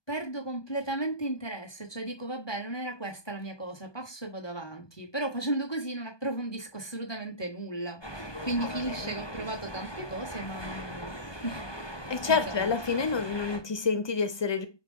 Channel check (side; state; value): right; late; 1.2 ms